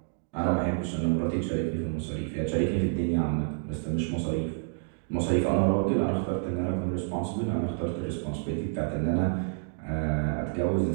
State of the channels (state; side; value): silent; left; 59 dB below the other